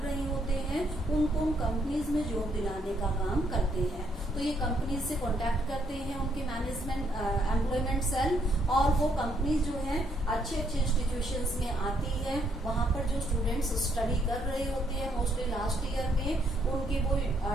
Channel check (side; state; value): both; normal; correlation 0.72